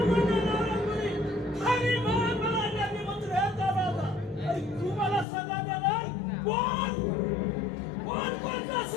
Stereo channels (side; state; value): right; drops out; at 5.2 s